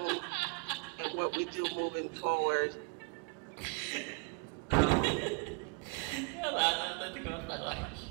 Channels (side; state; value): left; quieter; 30.4 dB